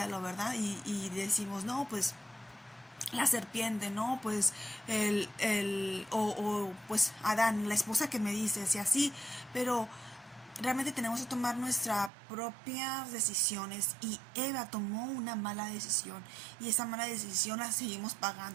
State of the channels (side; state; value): left; drops out; at 12.1 s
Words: ¿verdad? Y decimos, no, pues la serpiente, ¿no? Pues pues Adán, la esposa que me dices y así, pero realmente tenemos que tomar nuestras propias decisiones, y Eva tomó una mala decisión, y esa mala decisión la seguimos